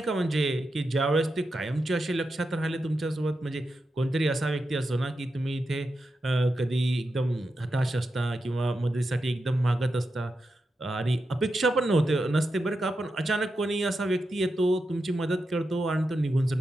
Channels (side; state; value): both; normal; correlation 0.88